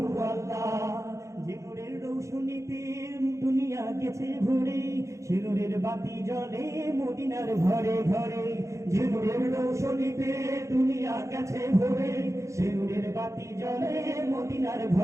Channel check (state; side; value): late; left; 0.15 ms